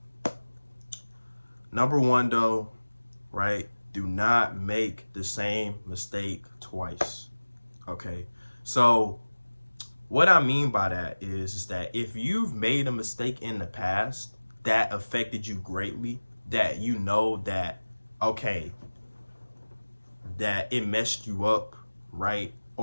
Number 1 though, right? Do not make the same mistake twice. Okay? So, what I mean by that is that if you've made a mistake in the past that affected you greatly, that you know that, okay, that it messed you up, right?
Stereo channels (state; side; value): inverted; both; correlation -1.00